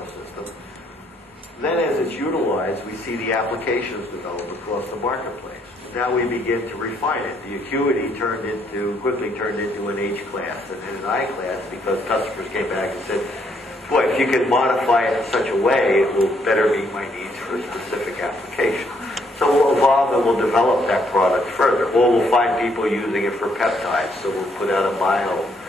system. Then as it's utilized, we see the applications develop across the marketplace. Now we begin to refine it. The acuity quickly turned into an H class and then an I class because customers came back and said, boy, if you could modify it in such a way, it will better meet my needs for a specific application. So we'll evolve and we'll develop that product further. Or we'll find people using it for peptides. So we'll put out a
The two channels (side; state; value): both; normal; correlation 0.71